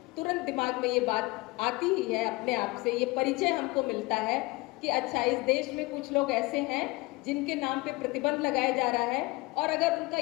तुरंत दिमाग में ये बात आती ही है अपने आप से, ये परिचय हमको मिलता है कि अच्छा, इस देश में कुछ लोग ऐसे हैं जिनके नाम पे प्रतिबंध लगाया जा रहा है, और अगर उनका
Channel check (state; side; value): quieter; right; 23.4 dB